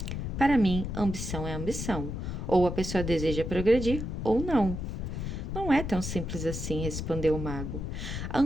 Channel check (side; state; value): left; noise; rumble, 4 dB below the sound